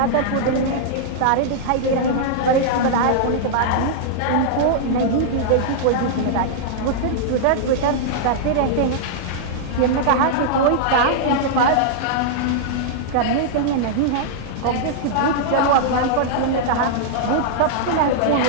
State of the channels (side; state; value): both; different; correlation -0.01